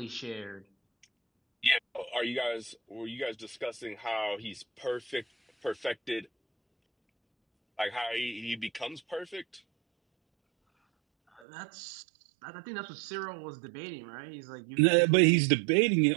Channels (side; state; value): left; drops out; at 11.4 s